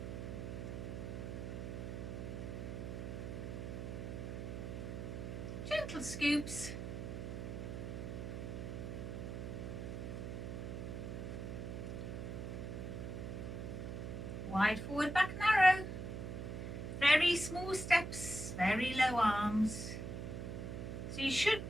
little scoops. Wide forward, back narrow. Very small steps, very low arms. So you should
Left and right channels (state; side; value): noise; right; hum, 5 dB below the sound